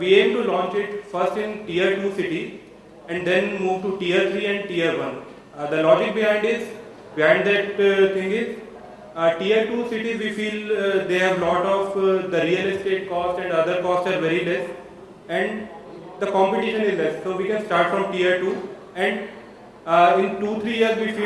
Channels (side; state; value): both; identical; correlation 1.00